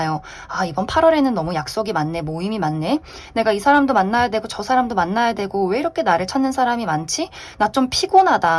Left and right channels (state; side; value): identical; both; correlation 1.00